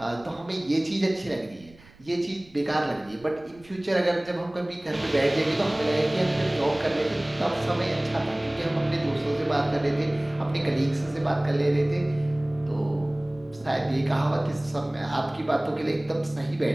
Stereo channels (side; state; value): right; noise; rumble, 25 dB below the sound